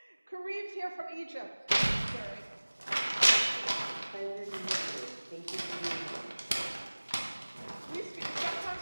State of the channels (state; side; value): inverted; both; correlation -1.00